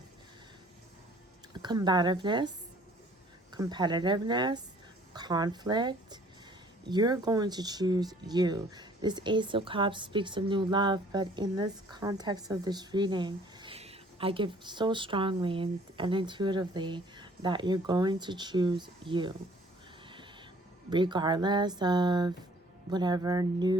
combativeness, competitiveness, conflict. You're going to choose you. This Ace of Cups speaks of new love, but in this context of this reading, I give so strongly and intuitively that you're going to choose you. Regardless of whatever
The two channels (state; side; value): normal; both; correlation 0.56